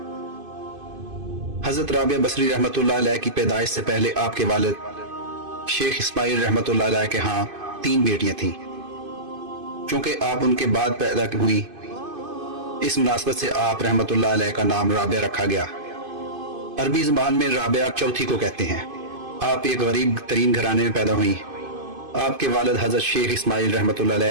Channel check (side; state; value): left; late; 2.5 ms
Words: हज़रत राबिया बसरी रहमतुल्लाह अलैह की पैदाइश से पहले आपके वालिद शेख इस्माइल रहमतुल्लाह अलैह के यहाँ 3 बेटियां थीं। चूंकि आप उनके बाद पैदा हुई, इस मुनासबत से आप रहमतुल्लाह अलैह का नाम राबिया रखा गया। अरबी ज़बान में राबिया चौथी को कहते हैं। आप एक गरीब तरीन घराने में पैदा हुई। आपके वालिद हज़रत शेख इस्माइल रहमतुल्लाह